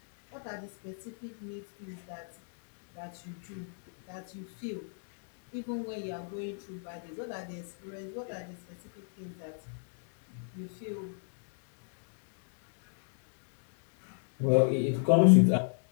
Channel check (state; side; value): silent; right; digital silence